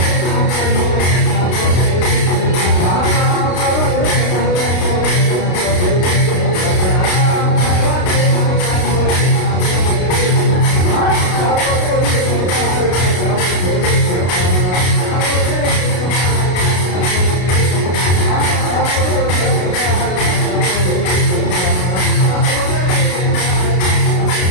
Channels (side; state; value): right; late; 33 ms